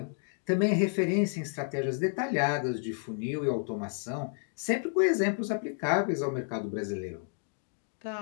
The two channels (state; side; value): silent; right; 57 dB below the other